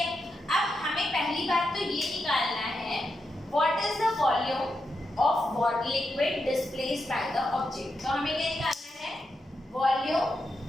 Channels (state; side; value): normal; both; correlation 0.85